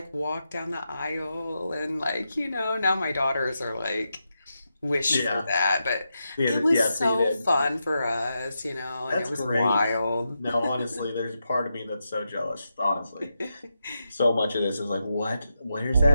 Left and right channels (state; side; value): inverted; both; correlation -0.87